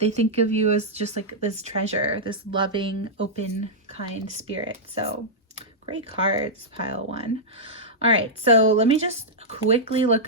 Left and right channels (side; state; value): both; normal; correlation -0.09